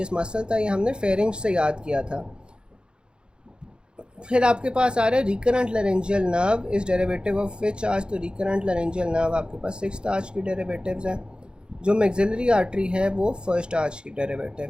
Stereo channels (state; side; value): late; left; 0.051 ms